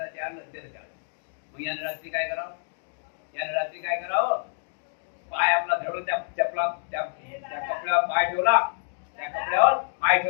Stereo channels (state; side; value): silent; right; digital silence